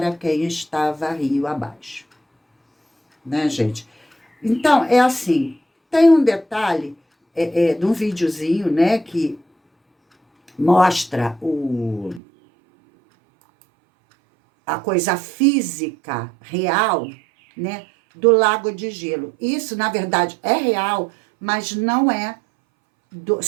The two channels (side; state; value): left; drops out; at 12.2 s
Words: quem estava rio abaixo. Né, gente? Então, é assim, tem um detalhe de um videozinho, né, que mostra a coisa física real, né, do lago de gelo. Isso, na verdade, é real, mas não é